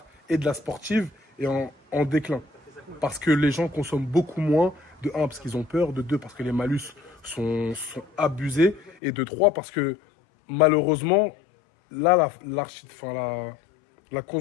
et de la sportive est en déclin. Parce que les gens consomment beaucoup moins. De 1, parce qu'ils ont peur. De 2, parce que les malus sont abusés. Et de 3, parce que malheureusement, là, la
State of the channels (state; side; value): drops out; right; at 9.0 s